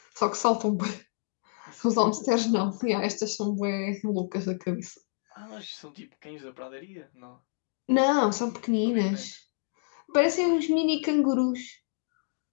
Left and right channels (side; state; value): right; silent; digital silence